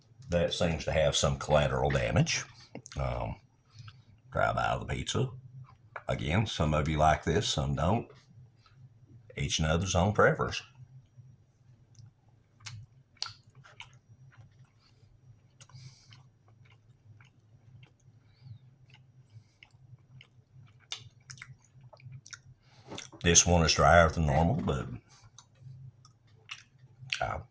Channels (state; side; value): identical; both; correlation 1.00